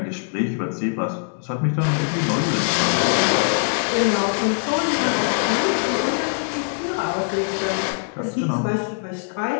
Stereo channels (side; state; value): right; silent; digital silence